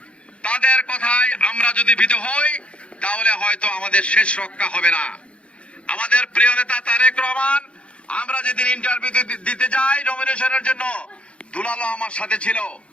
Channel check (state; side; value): late; right; 0.060 ms